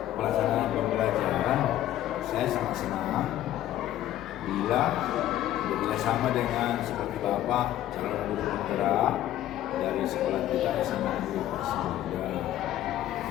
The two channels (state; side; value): quieter; right; 13.1 dB